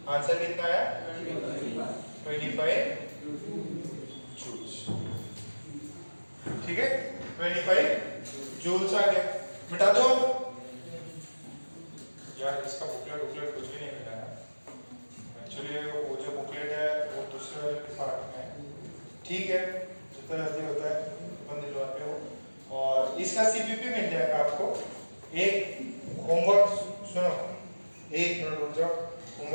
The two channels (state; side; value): inverted; both; correlation -1.00